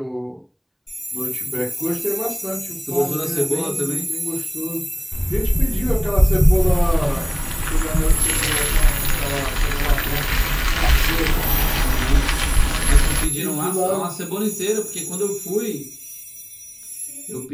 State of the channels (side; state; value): both; identical; correlation 1.00